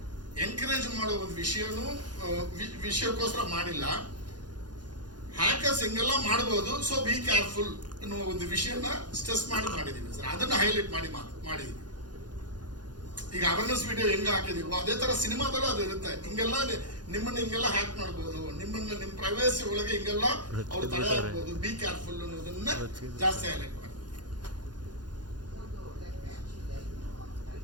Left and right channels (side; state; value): left; late; 0.70 ms